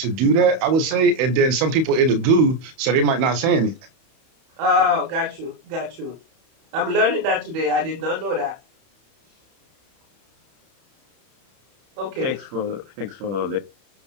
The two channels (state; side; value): late; left; 31 ms